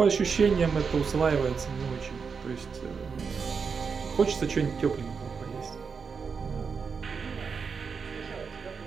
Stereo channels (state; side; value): quieter; left; 5.7 dB